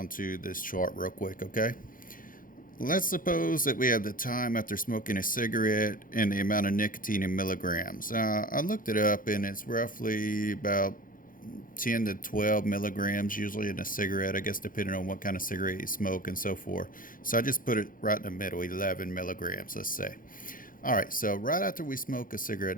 to this chart real quick, okay? Let's suppose that we have the time after smoking a cigarette and the amount of nicotine in milligrams. I looked it up and it's roughly about 10 to 12 milligrams usually in a cigarette, I guess depending on what kind of cigarette you smoke and so forth. So I just put it right in the middle, 11 milligrams, let's say. Alright, so right after we smoke a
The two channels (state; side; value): late; right; 0.40 ms